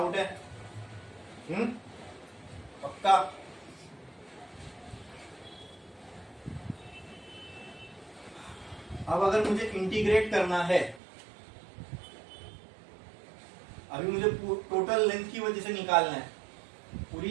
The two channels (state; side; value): drops out; left; at 11.0 s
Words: है, पक्का। अब अगर मुझे इंटीग्रेट करना है, अभी मुझे टोटल लेंथ की वजह से निकालना है, पूरी